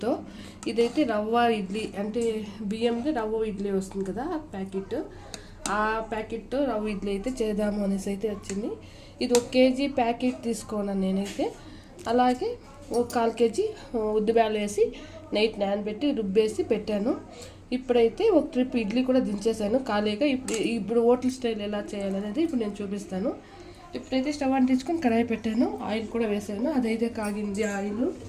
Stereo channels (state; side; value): identical; both; correlation 1.00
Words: ఇదైతే రవ్వ ఇడ్లీ, అంటే బియ్యంతో రవ్వ ఇడ్లీ వస్తుంది కదా ప్యాకెట్, ఆ ప్యాకెట్తో రవ్వ ఇడ్లీ అయితే చేద్దాము అనేసి అయితే వచ్చింది. ఇది 1 కేజీ ప్యాకెట్ తీసుకోను నేనైతే. అలాగే ఒక 1/4 కేజీ ఉద్దిబ్యాలు వేసి నైట్ నానబెట్టి రుబ్బేసి పెట్టాను. ఇప్పుడైతే ఒక ట్రిప్ ఇడ్లీ కూడా దించేసాను ఖాళీగా. ఇప్పుడు హోటల్ స్టైల్ ఎలా చేయాలనేది ఇప్పుడు నేను చూపిస్తాను. ఇప్పుడైతే స్టవ్ అంటించుకొని కడాయి పెట్టాను, ఆయిల్ కూడా వేసాను. అదైతే కాగింది ఆయిల్.